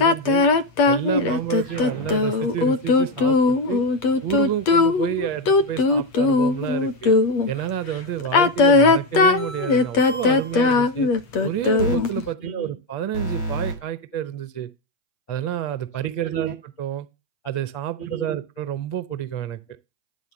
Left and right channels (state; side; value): late; right; 8.5 ms